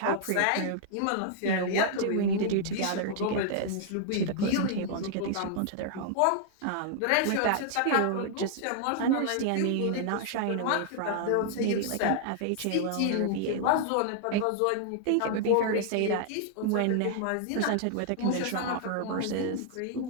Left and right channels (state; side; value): different; both; correlation -0.01